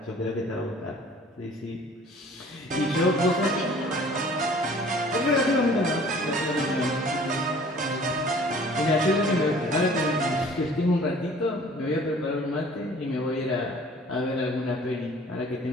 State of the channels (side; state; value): both; normal; correlation 0.50